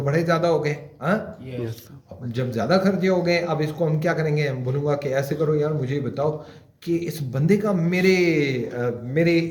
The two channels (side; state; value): both; identical; correlation 1.00